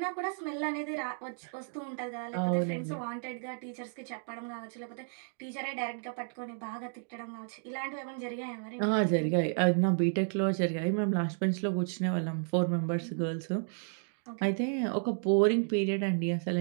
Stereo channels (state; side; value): silent; left; 56 dB below the other